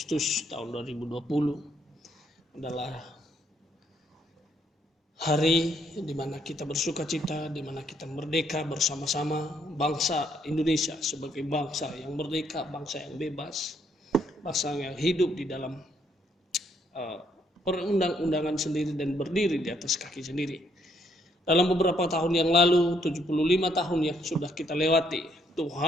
tahun 2020. Adalah hari di mana kita bersukacita, di mana kita merdeka bersama-sama bangsa Indonesia sebagai bangsa yang merdeka, bangsa yang bebas, bangsa yang hidup di dalam perundang-undangan sendiri dan berdiri di atas kaki sendiri. Dalam beberapa tahun yang lalu, 75 tahun yang sudah kita lewati,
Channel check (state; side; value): normal; both; correlation 0.71